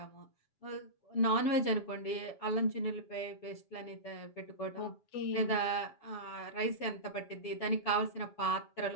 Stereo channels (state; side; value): late; right; 7.3 ms